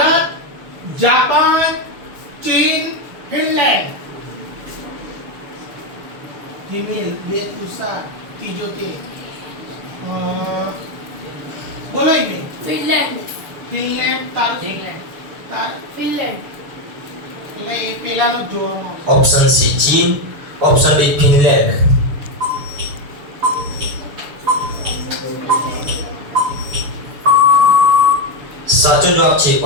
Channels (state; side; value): late; left; 6.8 ms